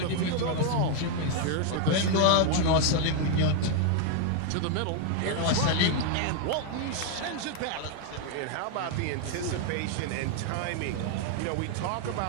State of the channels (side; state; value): both; different; correlation 0.01